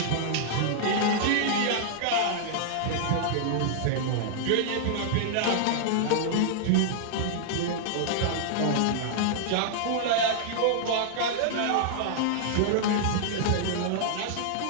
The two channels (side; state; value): both; different; correlation -0.01